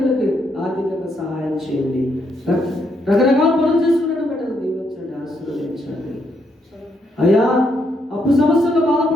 ఆర్థికంగా సహాయం చేయండి. రకరకాల పనులు చేసుకున్న బిడ్డలు దీవించండి, ఆశీర్వదించండి అయ్యా. అప్పు సమస్యల్లో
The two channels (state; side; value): normal; both; correlation 0.76